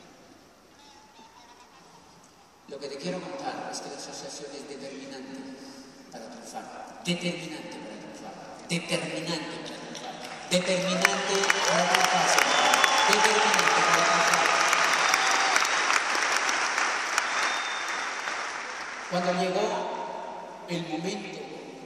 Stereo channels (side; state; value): both; identical; correlation 1.00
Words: Lo que te quiero contar es que la asociación es determinante para triunfar. Determinante para triunfar. Determinante para triunfar. Determinante para triunfar. Determinante para triunfar. Cuando llegó el momento